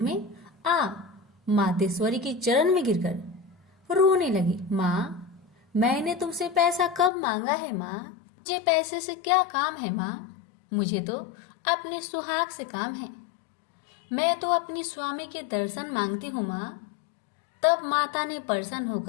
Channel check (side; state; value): right; drops out; at 7.1 s